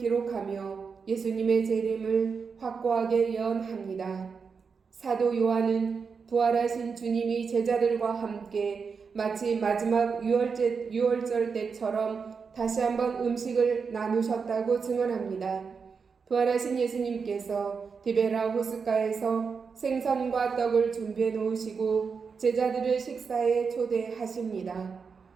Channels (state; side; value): quieter; left; 5.5 dB